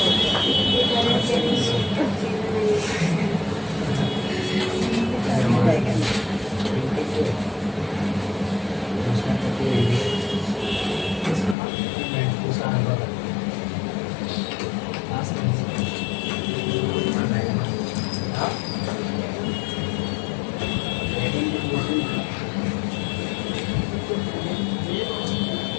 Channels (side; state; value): right; drops out; at 11.6 s